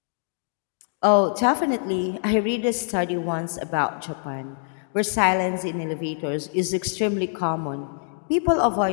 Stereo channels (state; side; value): silent; right; digital silence